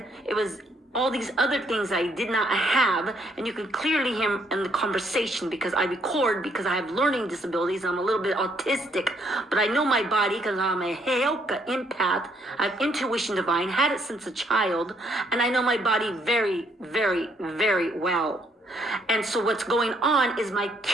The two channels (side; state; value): both; normal; correlation 0.70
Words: it was all these other things I did not have, and you can clearly hear in the conversation because I record because I have learning disabilities and I'm a little bit autistic, but I know my body because I'm a Heoka empath. I have intuition divine, had it since a child, and I know my body very, very, very well. And so what's going on is my